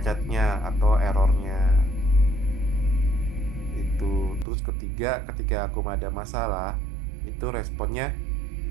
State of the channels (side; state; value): left; drops out; at 4.5 s